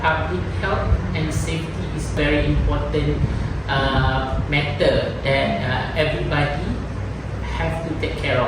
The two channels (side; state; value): both; identical; correlation 1.00